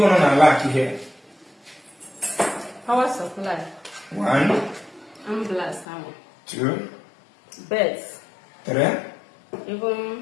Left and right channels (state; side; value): drops out; right; at 5.9 s